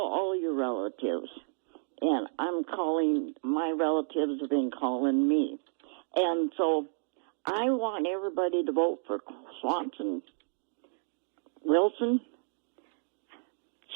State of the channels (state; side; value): silent; left; digital silence